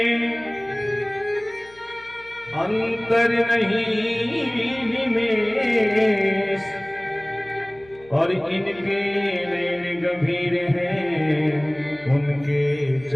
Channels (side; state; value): left; noise; hum, 26 dB below the sound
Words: अंतर नहीं निमेष, और इनके नैन गंभीर हैं, उनके